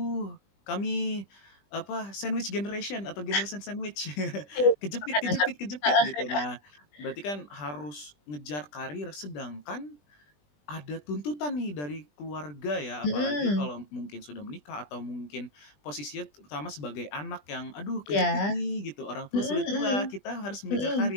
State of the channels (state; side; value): late; right; 20 ms